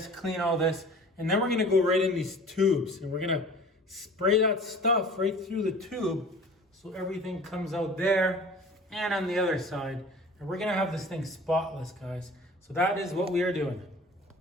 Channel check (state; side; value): normal; both; correlation 0.44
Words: clean all this, and then we're gonna go right in these tubes and we're gonna spray that stuff right through the tube so everything comes out there and on the other side. And we're gonna have this thing spotless, guys. So that is what we are doing.